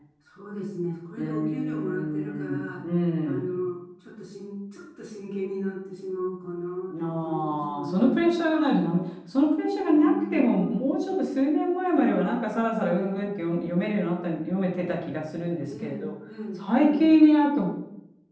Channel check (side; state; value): both; identical; correlation 1.00